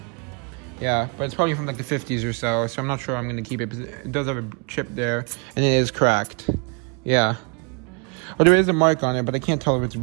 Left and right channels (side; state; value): left; quieter; 35.7 dB